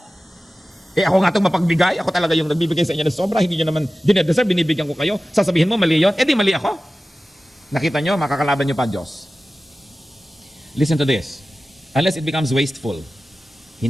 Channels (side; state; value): both; normal; correlation 0.96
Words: Ako nga itong mapagbigay, ako talaga yung nagbibigay sa inyo ng sobra, hindi nyo naman dinedeserve, binibigyan ko kayo. Sasabihin mo, mali yun? Di mali ako. Nakita nyo, makakalaban nyo pa Diyos. Listen to this. Unless it becomes wasteful,